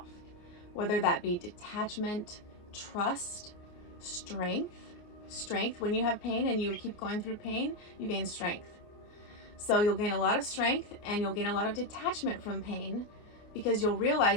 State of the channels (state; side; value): late; right; 29 ms